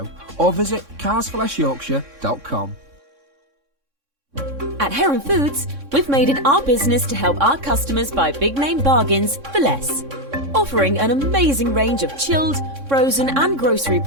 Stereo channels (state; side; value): late; left; 3.6 ms